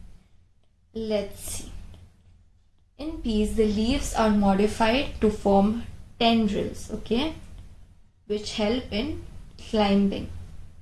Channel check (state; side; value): identical; both; correlation 1.00